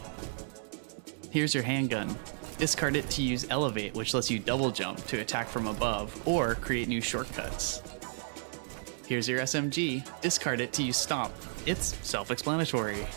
Here's your handgun. Discard it to use Elevate, which lets you double jump to attack from above, or create new shortcuts. Here's your SMG. Discard it to use Stomp. It's self-explanatory.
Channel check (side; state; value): left; silent; digital silence